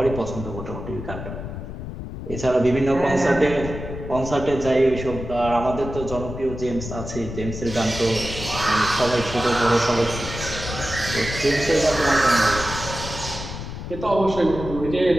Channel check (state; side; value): noise; left; rumble, 8 dB below the sound